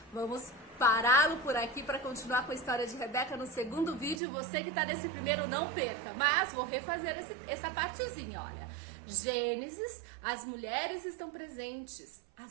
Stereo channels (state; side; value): drops out; left; at 4.2 s